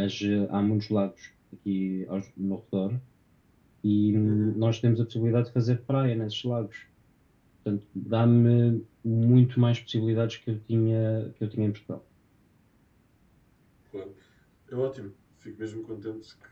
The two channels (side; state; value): both; identical; correlation 1.00